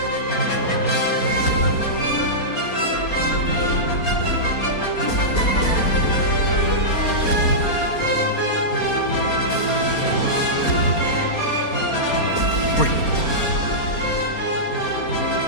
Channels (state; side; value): late; right; 4.3 ms